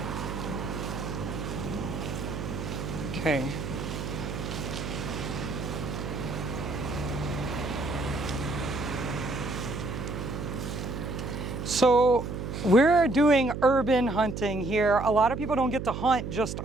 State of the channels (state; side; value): noise; right; hum, 5 dB below the sound